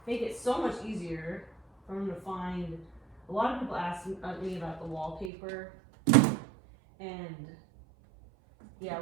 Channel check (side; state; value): left; drops out; at 5.3 s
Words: it so much easier for them to find. A lot of people ask me about the wallpaper, and yeah,